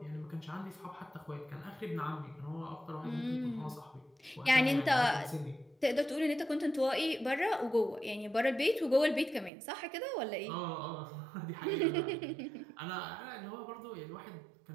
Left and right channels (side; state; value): left; drops out; at 9.5 s